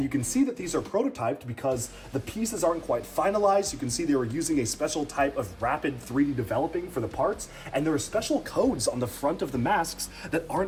you can see that these are prototyped because the pieces aren't quite finalized. You can see they were using a special type of rapid 3D developing for the parts, and there are special codes on the front of the masks that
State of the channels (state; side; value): identical; both; correlation 1.00